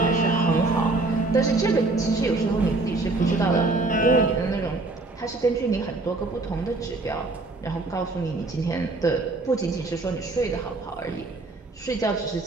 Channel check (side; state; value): left; quieter; 3.2 dB